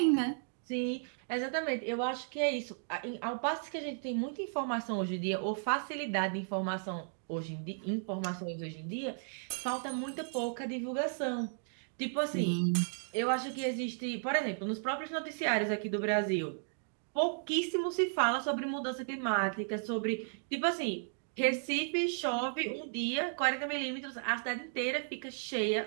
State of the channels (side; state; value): left; silent; digital silence